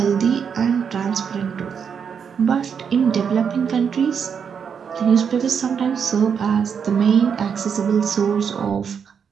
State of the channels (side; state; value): left; quieter; 6.9 dB